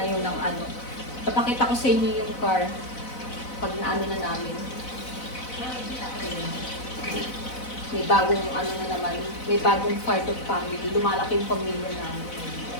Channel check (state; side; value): late; right; 4.0 ms